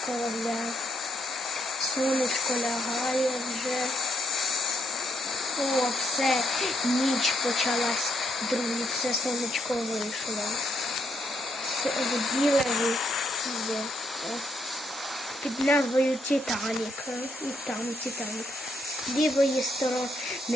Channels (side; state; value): both; normal; correlation 0.75